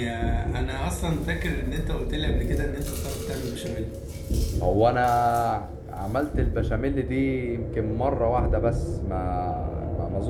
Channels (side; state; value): both; identical; correlation 1.00